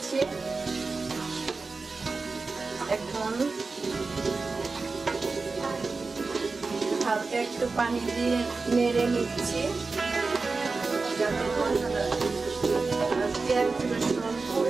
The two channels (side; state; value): left; quieter; 4.0 dB